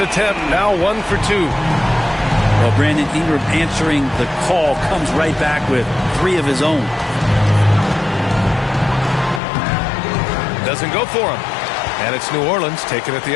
now 1 for 2. Well, Brandon Ingram answering the call comes right back with 3 of his own. Doesn't go for him. And it's New Orleans taking it the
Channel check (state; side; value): drops out; right; at 9.4 s